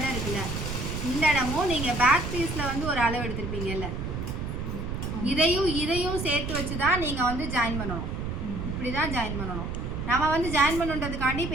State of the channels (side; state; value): right; noise; rumble, 4 dB below the sound